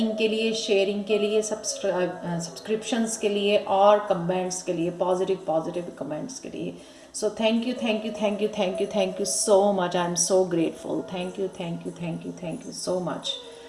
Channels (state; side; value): identical; both; correlation 1.00